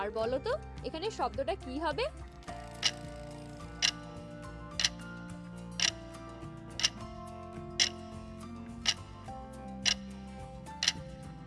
আর বলো তো এখানে শব্দটা কি হবে?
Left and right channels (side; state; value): both; identical; correlation 1.00